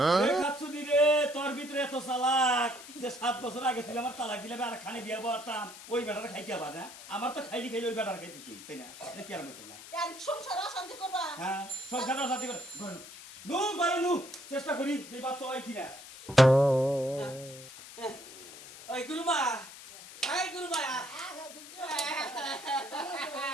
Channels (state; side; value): noise; left; hiss, 15 dB below the sound